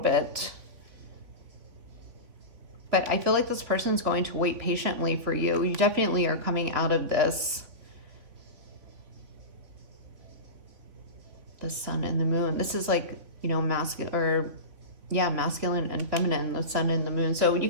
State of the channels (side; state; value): left; late; 3.4 ms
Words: But I feel like this person's going to wait patiently for you. You definitely are coming out of this. The Sun and the Moon. This is like, you know, masculine, or yeah, masculine and feminine, the Sun and the Moon. So you